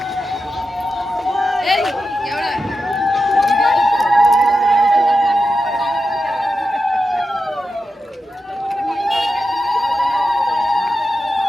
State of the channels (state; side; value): normal; both; correlation 0.90